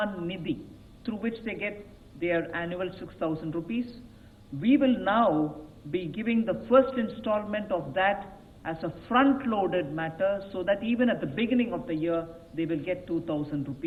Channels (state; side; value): identical; both; correlation 1.00